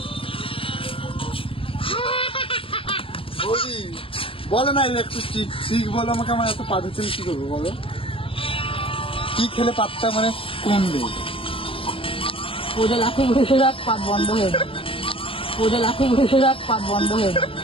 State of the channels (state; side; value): late; right; 0.26 ms